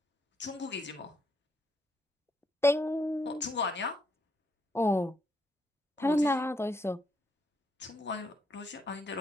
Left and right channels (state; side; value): normal; both; correlation 0.75